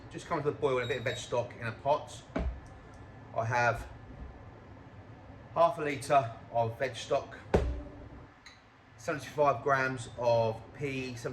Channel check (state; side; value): identical; both; correlation 1.00